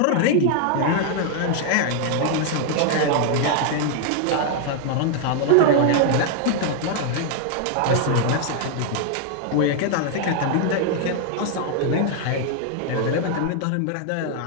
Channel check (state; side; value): different; both; correlation 0.00